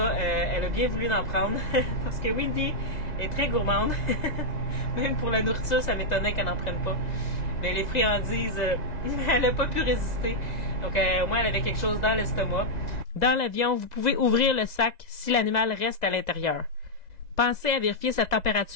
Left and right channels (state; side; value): late; right; 2.0 ms